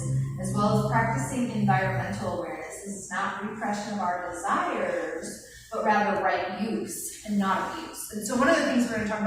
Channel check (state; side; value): identical; both; correlation 1.00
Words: as well as practicing environmental awareness. This is not repression of our desires, but rather right use and not abuse. And so one of the things we're going to talk